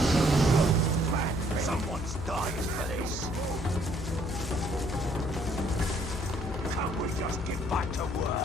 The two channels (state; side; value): noise; left; hum, 8 dB below the sound